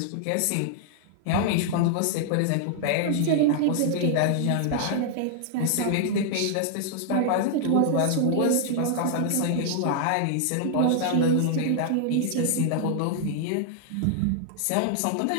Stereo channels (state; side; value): different; both; correlation -0.01